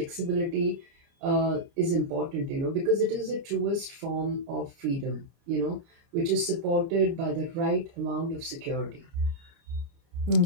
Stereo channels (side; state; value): left; late; 29 ms